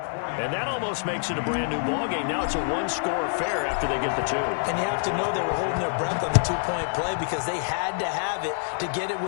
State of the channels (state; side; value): silent; right; digital silence